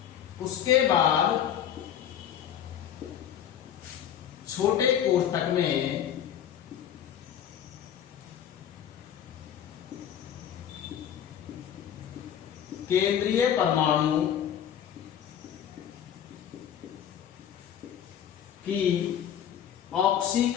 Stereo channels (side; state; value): right; quieter; 9.7 dB